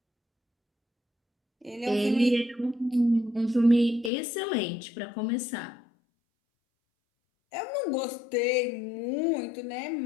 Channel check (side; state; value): right; drops out; at 4.1 s